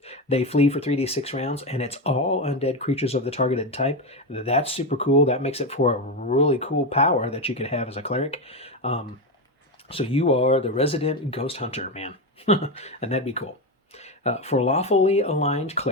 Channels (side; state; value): both; normal; correlation 0.12